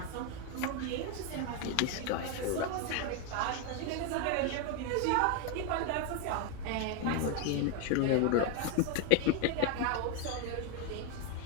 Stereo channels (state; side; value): different; both; correlation 0.02